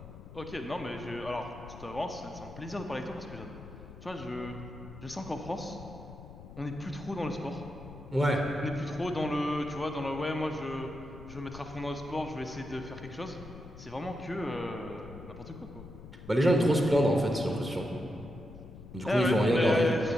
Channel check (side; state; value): left; noise; rumble, 15 dB below the sound